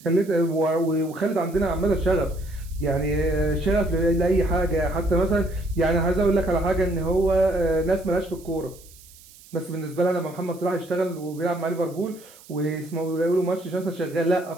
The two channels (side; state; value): right; noise; hiss, 23 dB below the sound